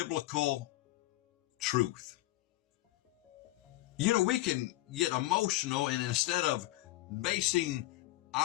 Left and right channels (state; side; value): quieter; right; 18.3 dB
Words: truth, we can get emotional, and instead of basing